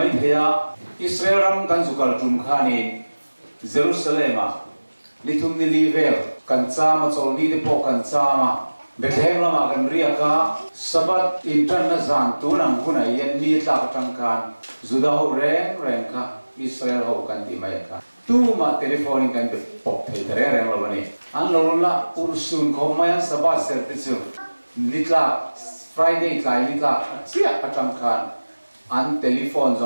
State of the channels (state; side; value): inverted; both; correlation -1.00